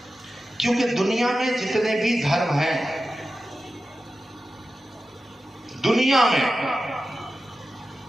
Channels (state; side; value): normal; both; correlation 0.93